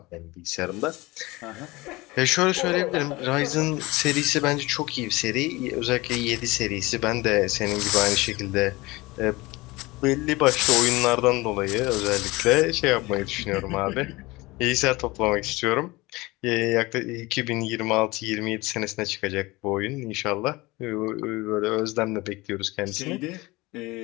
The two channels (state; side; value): quieter; right; 21.9 dB